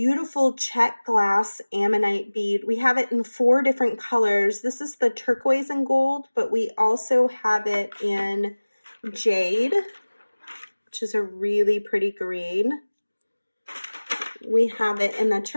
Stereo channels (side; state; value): both; inverted; correlation -1.00